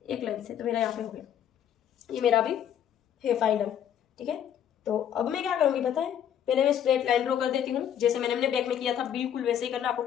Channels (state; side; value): quieter; right; 9.6 dB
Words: एक लाइन से, तो मेरा यहाँ पे हो गया, ये मेरा भी है फाइनल, ठीक है। तो अब मैं क्या करूँगी पता है, पहले मैं स्ट्रेट लाइन ड्रॉ कर देती हूँ, जैसे मैंने अपने बैक में किया था बिल्कुल वैसे ही करना, आपको